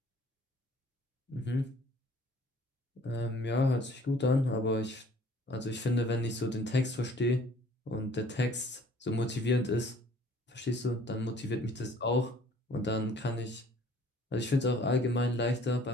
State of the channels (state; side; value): normal; both; correlation 0.54